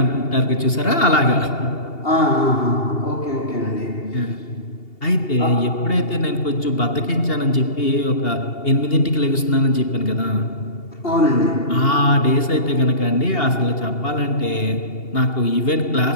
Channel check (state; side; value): late; right; 2.8 ms